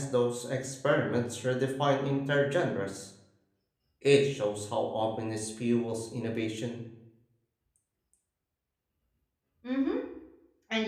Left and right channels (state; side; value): identical; both; correlation 1.00